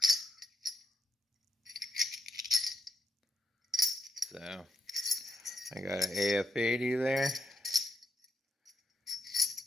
So, I got an AF80 there.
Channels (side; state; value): both; normal; correlation 0.77